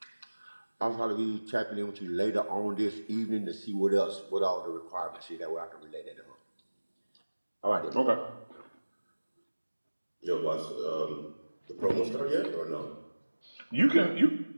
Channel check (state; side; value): inverted; both; correlation -1.00